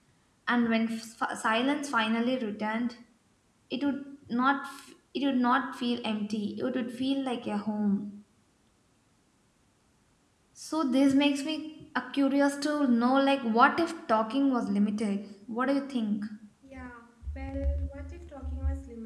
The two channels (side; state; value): both; identical; correlation 1.00